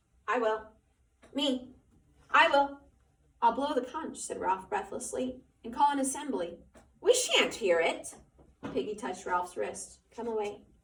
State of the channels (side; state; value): both; identical; correlation 1.00